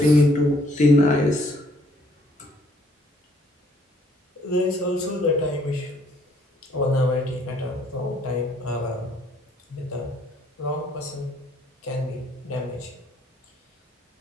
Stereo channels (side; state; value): both; normal; correlation 0.64